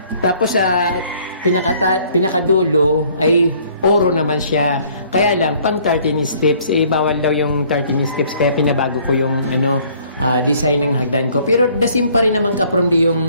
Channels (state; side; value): inverted; both; correlation -0.59